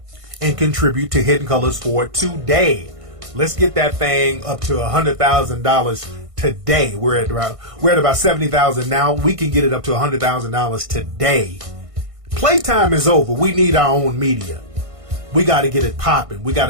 and contribute to Hidden Colors for today. Let's get that thing up to $100,000 today. We're at about $70,000 now. We can get it up to $100,000 today. Playtime is over. We need our own media. We got to get it popping. We got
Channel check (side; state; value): left; late; 1.5 ms